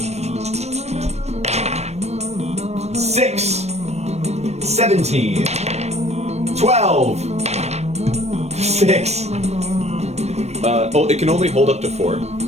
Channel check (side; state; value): left; late; 0.31 ms